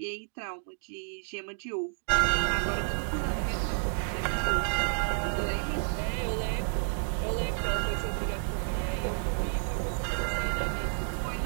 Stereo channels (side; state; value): left; silent; digital silence